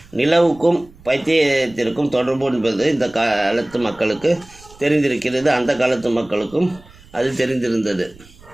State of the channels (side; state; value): right; noise; rumble, 24 dB below the sound